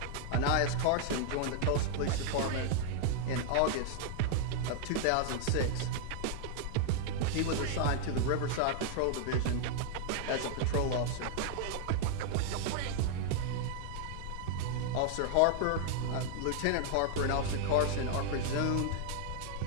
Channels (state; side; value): different; both; correlation -0.01